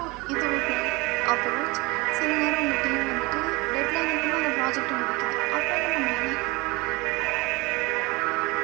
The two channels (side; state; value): left; quieter; 24.4 dB